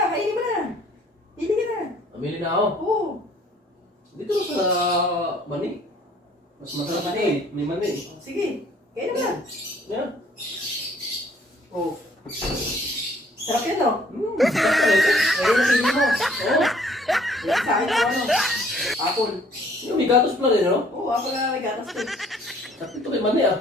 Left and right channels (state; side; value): normal; both; correlation 0.59